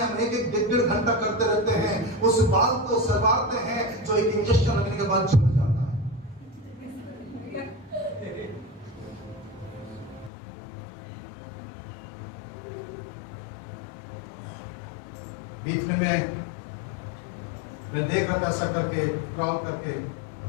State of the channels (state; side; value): drops out; right; at 10.3 s